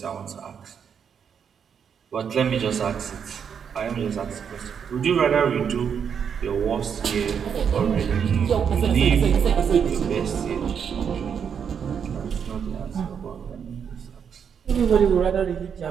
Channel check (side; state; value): left; quieter; 7.3 dB